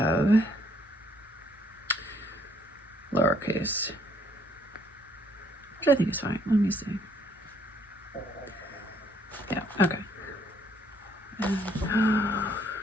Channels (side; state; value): both; normal; correlation 0.66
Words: lowercase, which I think is fine. Let me see. Yeah, okay. And,